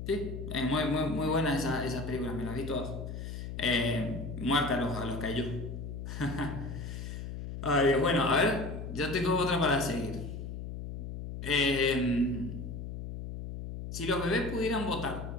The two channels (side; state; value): left; noise; hum, 7 dB below the sound